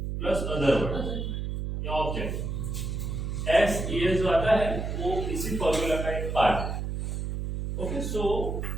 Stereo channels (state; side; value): noise; right; hum, 3 dB below the sound